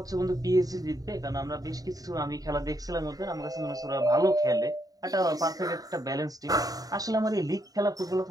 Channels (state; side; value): late; left; 0.18 ms